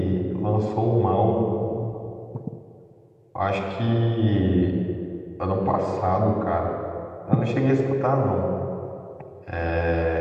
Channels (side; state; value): both; identical; correlation 1.00